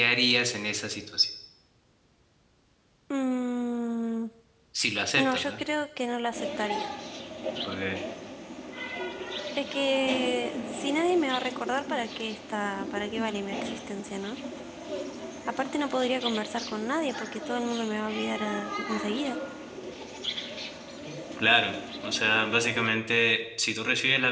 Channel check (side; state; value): both; identical; correlation 1.00